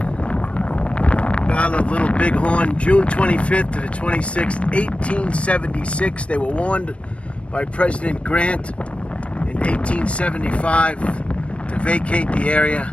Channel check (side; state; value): right; late; 0.061 ms